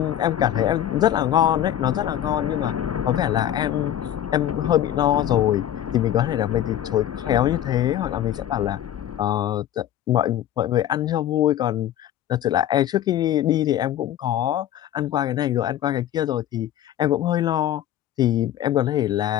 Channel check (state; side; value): quieter; right; 11.6 dB